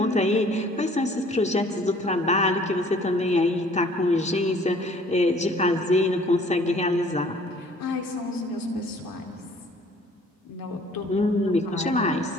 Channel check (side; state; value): both; normal; correlation 0.55